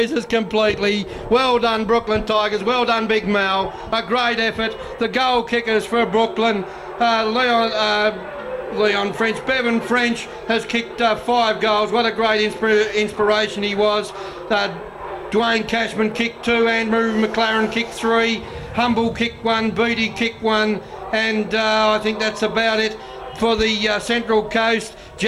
completely. Well done, Brooklyn Tigers. Well done, Big Mel. A great effort. The goal kickers for Brooklyn, Leon French. Bevan French has kicked 5 goals. What a great inspiration he was. Dwayne Cashman kicked 2. Andrew McLaren kicked 3. Humble kicked 1. Beatty kicked 1. And I think that's about it. For the Central Coast,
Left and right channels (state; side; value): identical; both; correlation 1.00